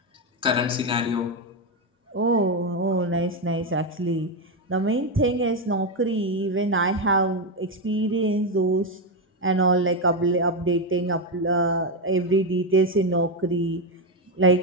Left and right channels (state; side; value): normal; both; correlation 0.08